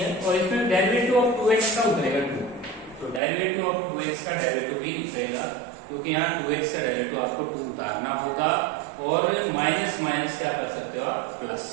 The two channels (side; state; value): left; drops out; at 3.2 s